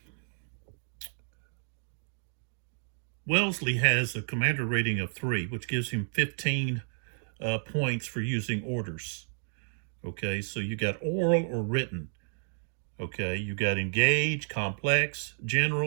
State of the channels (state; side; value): silent; left; digital silence